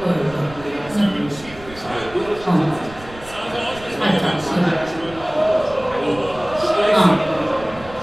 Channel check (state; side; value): noise; right; rumble, 18 dB below the sound